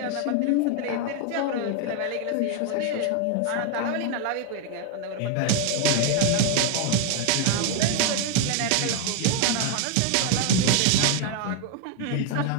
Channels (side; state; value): both; different; correlation 0.01